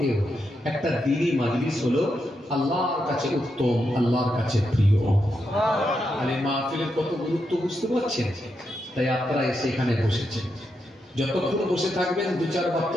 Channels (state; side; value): normal; both; correlation 0.84